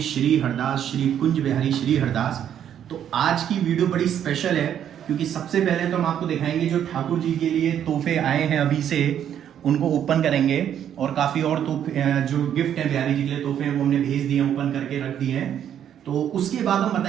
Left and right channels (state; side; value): quieter; left; 9.7 dB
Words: हरदास श्री कुंज बिहारी श्री हरदास। तो आज की वीडियो बड़ी स्पेशल है क्योंकि सबसे पहले तो हम आपको दिखाएंगे जो ठाकुर जी के लिए तोहफे आए हैं अभी से उनको ओपन करेंगे और काफ़ी और तोहफे जो गिफ्ट हैं बिहारी जी के लिए तोहफे हैं वो हमने भेज दिए ओपन करके रख दिए हैं। तो उसके बाद हम